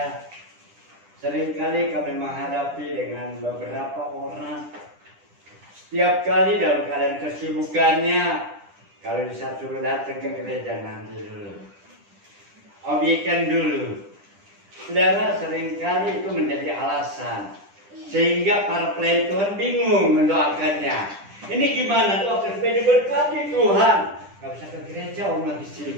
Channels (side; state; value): left; late; 10 ms